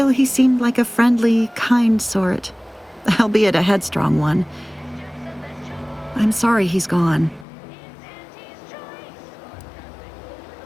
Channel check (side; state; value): right; drops out; at 7.5 s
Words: he seemed like a friendly, kind sort, albeit a headstrong one. I'm sorry he's gone.